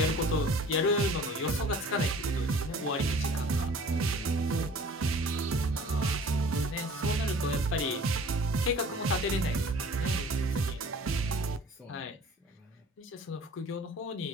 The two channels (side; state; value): both; normal; correlation 0.47